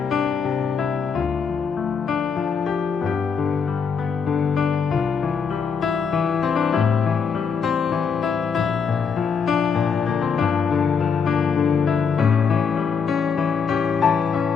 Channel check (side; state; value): right; quieter; 6.1 dB